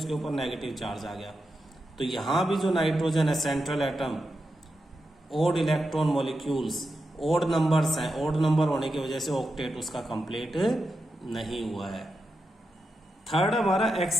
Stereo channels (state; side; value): normal; both; correlation 0.88